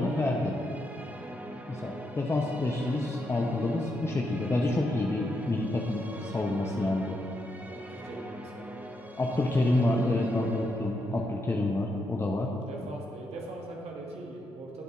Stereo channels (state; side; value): normal; both; correlation 0.81